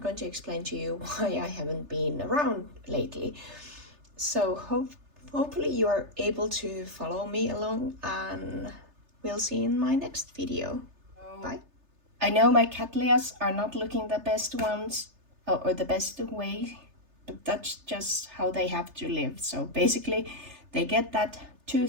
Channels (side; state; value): left; late; 3.3 ms